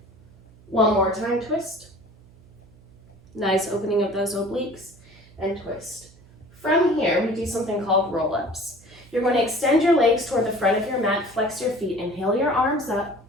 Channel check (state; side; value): noise; right; hum, 26 dB below the sound